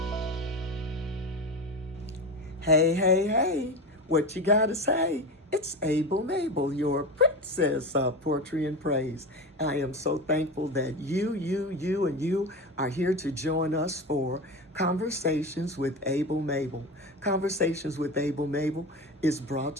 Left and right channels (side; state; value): both; normal; correlation 0.24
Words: hey, hey, what you gotta say? It's Mable, your princess of poetry and praise. I am so thankful that you are here to join us for Conversations with Mable. Conversations with Mable is brought